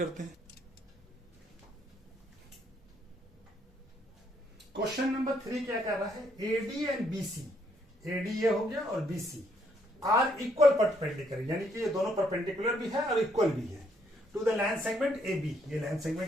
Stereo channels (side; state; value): both; normal; correlation 0.71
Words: हैं। क्वेश्चन नंबर 3 क्या कर रहा है, एडी एंड बीसी, एडी ये हो गया और बीसी आर इक्वल परपेंडिकुलर, यानी कि ये दोनों परपेंडिकुलर भी है और इक्वल भी है to the line segment A B, ये लाइन